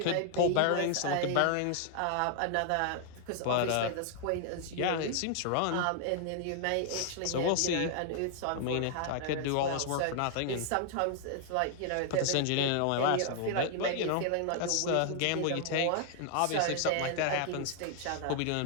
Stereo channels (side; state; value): both; different; correlation 0.00